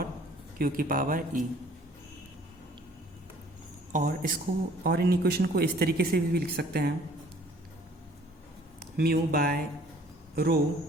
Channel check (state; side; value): normal; both; correlation 0.55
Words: q की पावर e। और इसको और इन इक्वेशन को इस तरीके से भी लिख सकते हैं, mu by rho